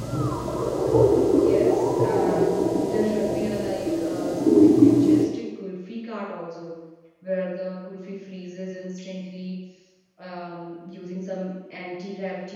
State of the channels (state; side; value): identical; both; correlation 1.00